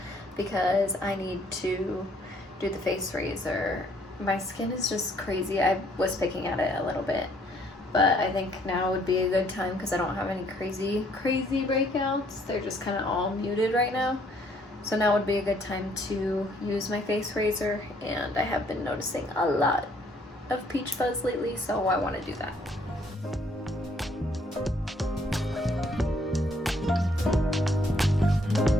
because I need to do the face razor. My skin is just crazy. I was picking at it a little bit, but I think now would be a good time because I don't have any crazy breakouts. They're just kind of all muted right now. So now would be a good time to use my face razor, and I have been noticing a lot of peach fuzz lately, so I want to do that.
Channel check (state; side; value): normal; both; correlation 0.65